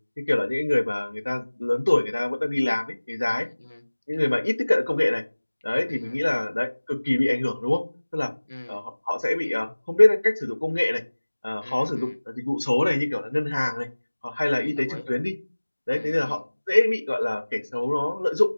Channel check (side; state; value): both; inverted; correlation -1.00